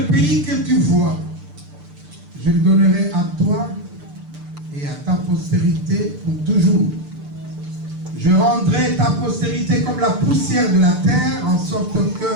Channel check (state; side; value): late; left; 6.8 ms